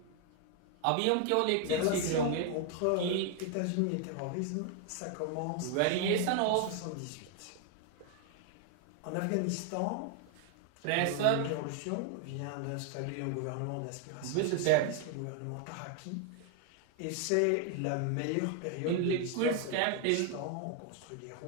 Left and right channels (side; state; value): both; different; correlation 0.00